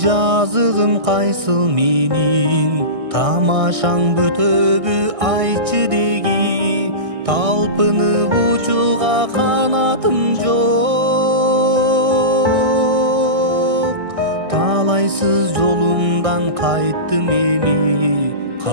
кайсыл менин, тамашаң бүтөбү айтчы деги. Талпынып учууга канатым жок. Талайсыз жолумдан кайттым эми.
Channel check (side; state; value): left; late; 1.6 ms